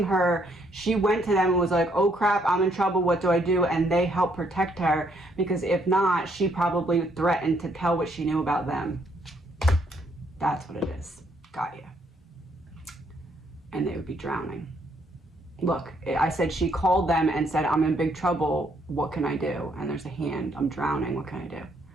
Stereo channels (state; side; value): normal; both; correlation 0.70